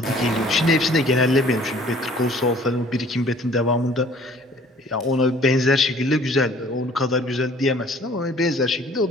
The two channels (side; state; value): both; normal; correlation 0.53